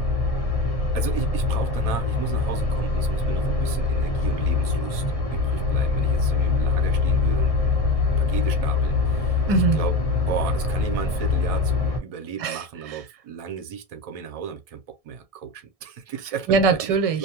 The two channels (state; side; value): late; left; 1.7 ms